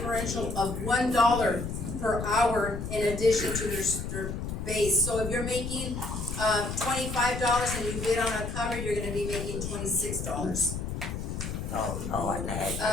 of $1 per hour in addition to their base. So if you're making $25 and you bid on a cover, you're gonna be making $26. Oh, Lord,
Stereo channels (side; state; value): left; noise; rumble, 5 dB below the sound